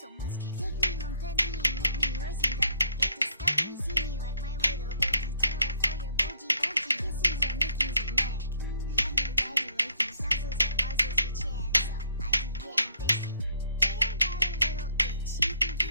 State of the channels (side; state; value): both; inverted; correlation -0.66